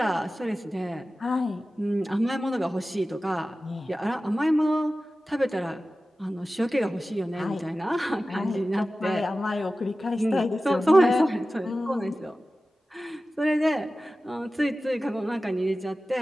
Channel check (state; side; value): normal; both; correlation 0.95